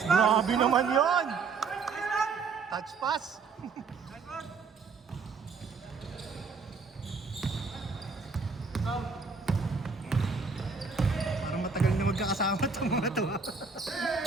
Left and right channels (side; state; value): left; quieter; 4.8 dB